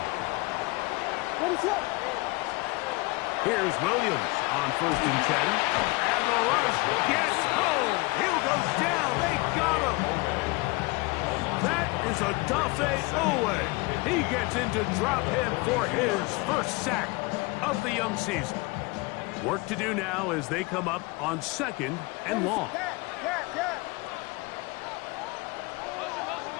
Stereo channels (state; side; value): quieter; right; 25.1 dB